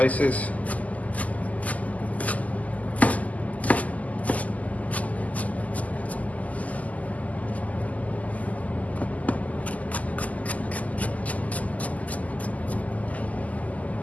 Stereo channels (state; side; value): late; right; 0.075 ms